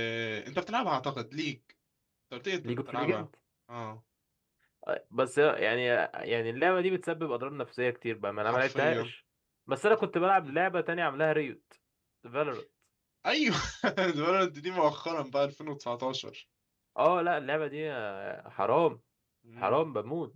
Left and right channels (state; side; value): identical; both; correlation 1.00